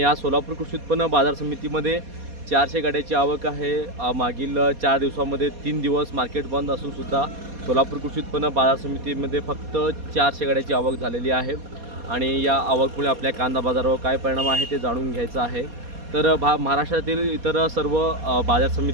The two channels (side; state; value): left; late; 4.2 ms